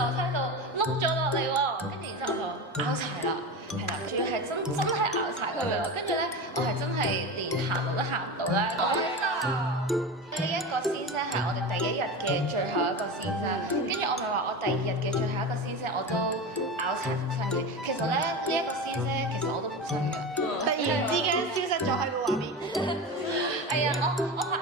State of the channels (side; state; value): both; normal; correlation 0.25